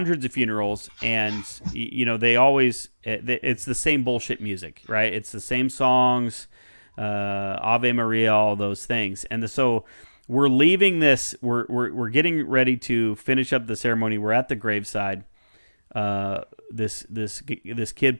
of funerals, and they always, it's the same bullshit music, right? It's the same songs, Ave Maria, all those things, and so we're leaving this. We're getting ready to finish up the ceremony. We're at the graveside. This kid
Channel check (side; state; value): both; inverted; correlation -1.00